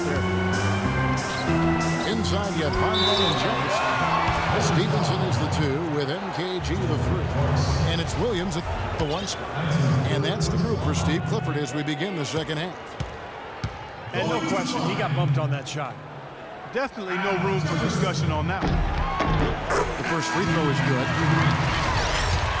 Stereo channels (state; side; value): identical; both; correlation 1.00